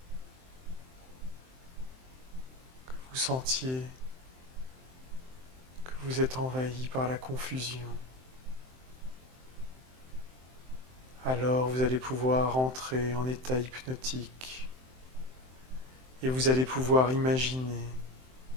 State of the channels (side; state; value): left; late; 23 ms